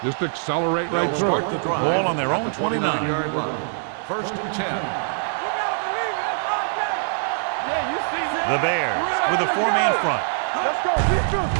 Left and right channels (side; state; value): left; silent; digital silence